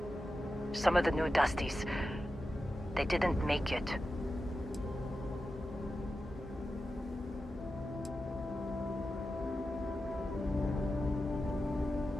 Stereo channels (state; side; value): normal; both; correlation 0.91